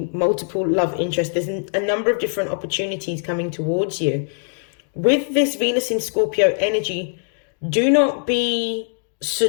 multiple love interests. There's a number of different opportunities coming towards you. With this Venus in Scorpio energy, do not be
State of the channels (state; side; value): silent; right; digital silence